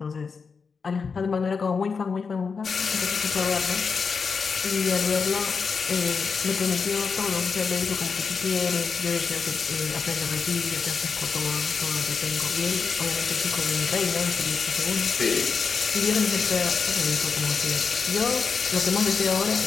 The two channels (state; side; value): quieter; right; 5.3 dB